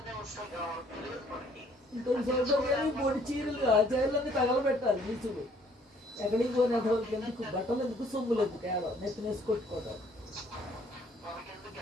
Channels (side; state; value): both; normal; correlation 0.62